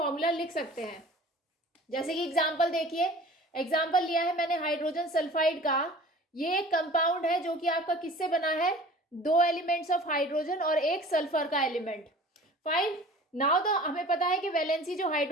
लिख सकते हैं। जैसे कि एग्जांपल देखिए, एग्जांपल लिया है मैंने हाइड्रोजन सल्फाइड का। ये एक कंपाउंड है जो कि आपका किससे बना है, दो एलिमेंट्स ऑफ हाइड्रोजन और एक सल्फर का एलिमेंट। फाइन। नाउ तो हमें पता है कि वैलेंसी जो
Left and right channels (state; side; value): normal; both; correlation 0.44